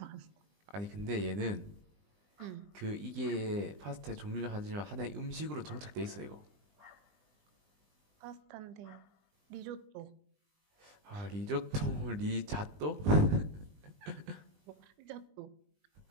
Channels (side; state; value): left; late; 20 ms